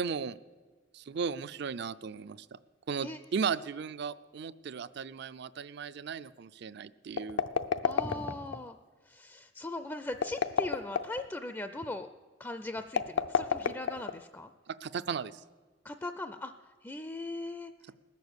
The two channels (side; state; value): both; normal; correlation -0.13